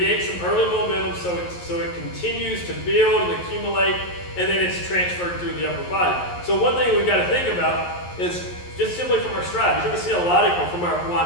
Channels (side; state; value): right; late; 11 ms